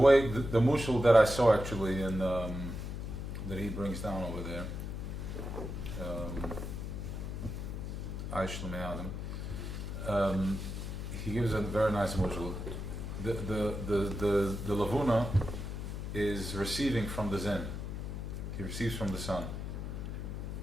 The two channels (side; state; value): left; noise; hum, 5 dB below the sound